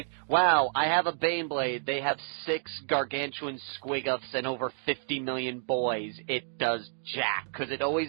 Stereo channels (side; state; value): left; silent; digital silence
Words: wow, I have a Baneblade. They have 6 gargantuan squiggles and over 50 million boys. It does jack, because it always...